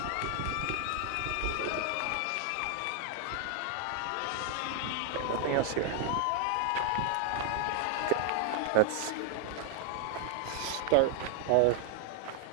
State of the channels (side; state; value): both; different; correlation -0.01